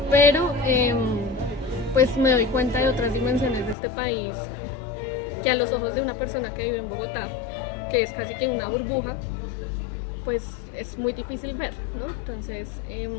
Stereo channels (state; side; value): drops out; right; at 3.8 s